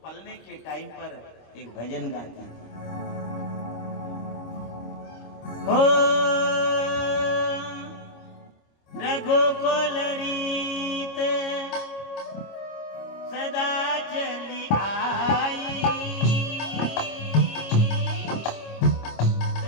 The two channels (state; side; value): late; right; 25 ms